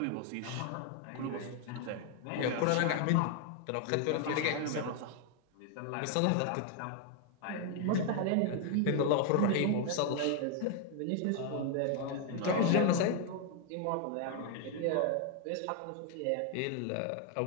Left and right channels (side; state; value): both; different; correlation 0.00